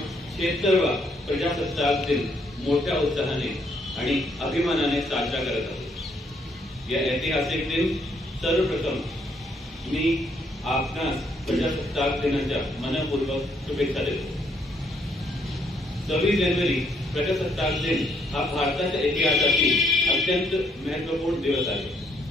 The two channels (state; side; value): normal; both; correlation 0.71